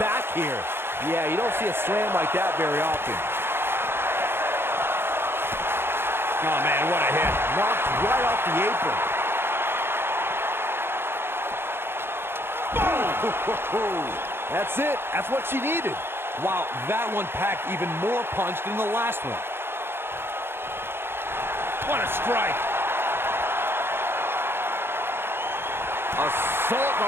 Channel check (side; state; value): left; late; 0.11 ms